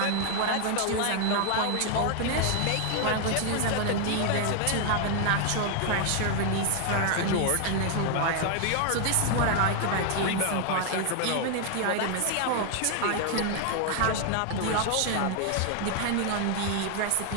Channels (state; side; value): different; both; correlation 0.00